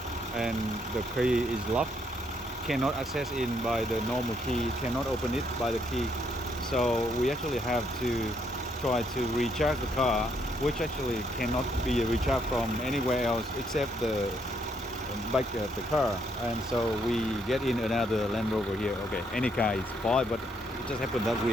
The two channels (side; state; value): both; normal; correlation 0.72